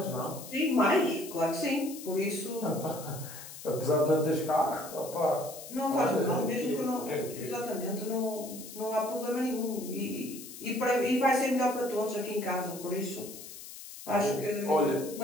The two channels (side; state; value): left; noise; hiss, 13 dB below the sound